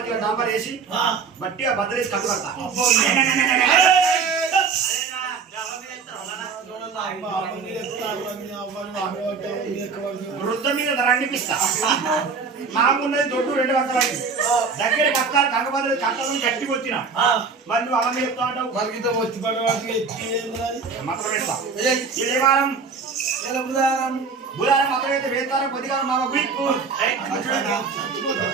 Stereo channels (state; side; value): quieter; left; 5.1 dB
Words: డాంబర్ వేసి బట్టిగా బద్దలేసి కట్టు కడతా వృద్ధ మీద రండిపిస్తా మాకున్నది దొడ్డు 2 పక్కలై దగ్గర కట్టాలి కంగబద్దలు కట్టాలని గట్టి వచ్చిన మరి నువ్వు అమ్మ చెప్తా ఉంటావు మరిగితో వచ్చి పడవాడికి మాత్రం వేస్తా ఏ వారం బుధారం మాత్రం అయితే వేస్తారా కొద్దిగా మామ గుడికు